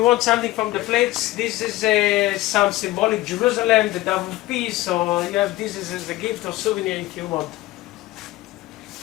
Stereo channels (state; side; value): quieter; right; 17.9 dB